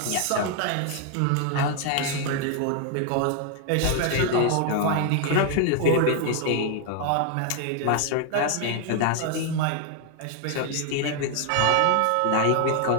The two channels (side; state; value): both; different; correlation 0.00